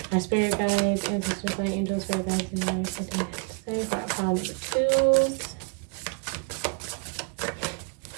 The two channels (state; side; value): quieter; left; 38.4 dB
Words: our spirit guides, ancestors, light angels, spirit guides, and our second have to say for our pile number twos.